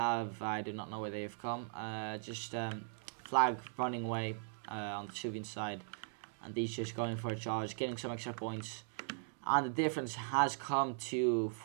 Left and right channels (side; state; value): left; silent; digital silence